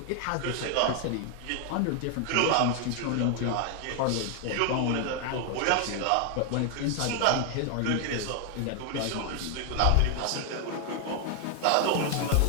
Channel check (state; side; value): different; both; correlation 0.00